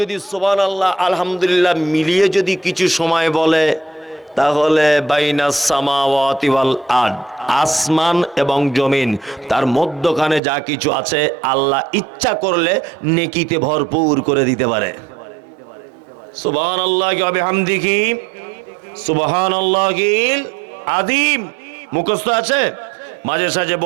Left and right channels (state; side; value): drops out; left; at 10.4 s